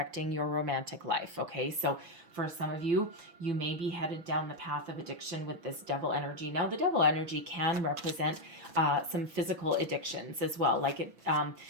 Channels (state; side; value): late; left; 6.1 ms